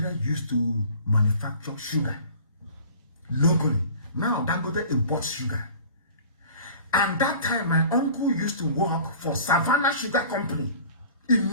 used to manufacture sugar locally. Now Dangote imports sugar. And that time my uncle used to work for Savannah Sugar Company in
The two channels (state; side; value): inverted; both; correlation -0.45